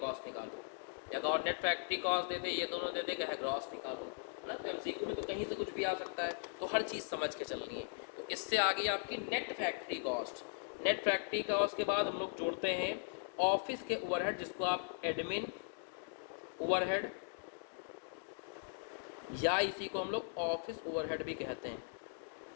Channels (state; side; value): silent; right; digital silence